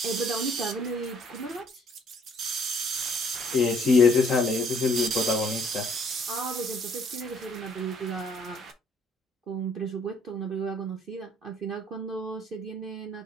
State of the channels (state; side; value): normal; both; correlation 0.62